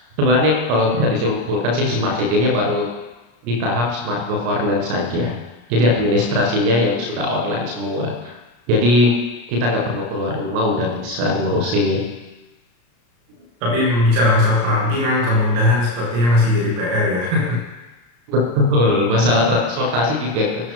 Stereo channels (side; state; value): left; late; 34 ms